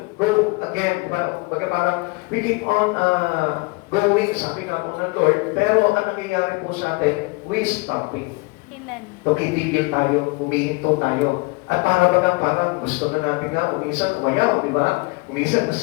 again. Diba? Parang we keep on going, sabi nga po ng Lord, pero ang nangyayari po sa atin, we stopping. Amen. Tumitigil tayo, humihinto tayo. At parang gusto na natin nga, uminsan umayaw, di ba? Uminsan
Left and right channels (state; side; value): quieter; right; 27.5 dB